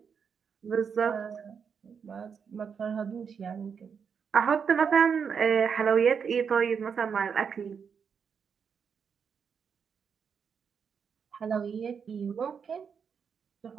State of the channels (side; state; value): left; quieter; 6.6 dB